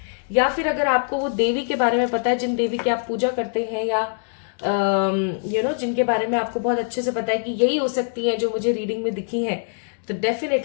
या फिर अगर आपको वो देवी के बारे में पता है, जिन देवी की आप पूजा करते हैं, या जिनके बारे में आपको बहुत अच्छे से पता है कि यही हो सकती है जो मुझे रीडिंग में दिखी है, तो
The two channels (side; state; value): right; silent; digital silence